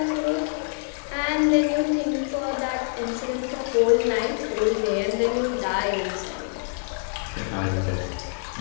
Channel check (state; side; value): silent; right; digital silence